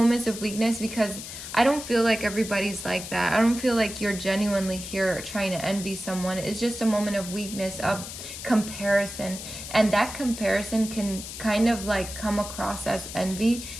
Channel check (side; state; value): left; noise; hiss, 10 dB below the sound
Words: of weakness because I don't feel like everybody's like that. I don't feel like you're genuinely here trying to envy someone. It's just a moment of weakness, of comparison. And that comparison can kind of like come across as envy,